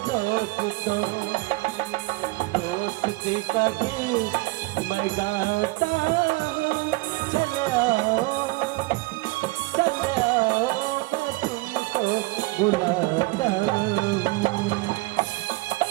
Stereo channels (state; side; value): quieter; left; 23.4 dB